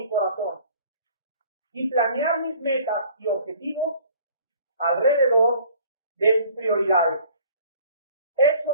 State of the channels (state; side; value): inverted; both; correlation -0.52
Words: corazón y planear mis metas y objetivos alrededor de sus prioridades.